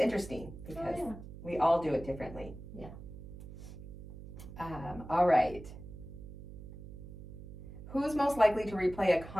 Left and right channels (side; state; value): right; noise; hum, 13 dB below the sound